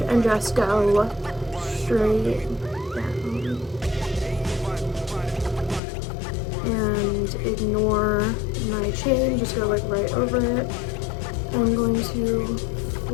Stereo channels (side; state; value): right; drops out; at 5.8 s